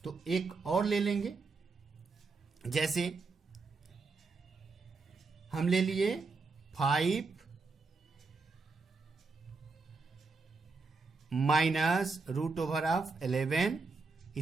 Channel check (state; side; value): quieter; left; 4.2 dB